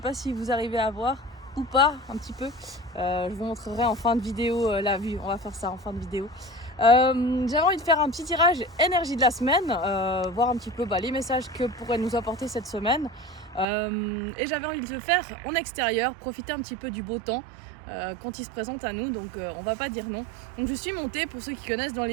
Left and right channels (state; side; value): drops out; left; at 13.7 s